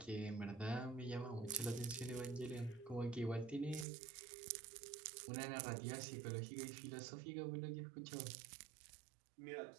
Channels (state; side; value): drops out; left; at 3.9 s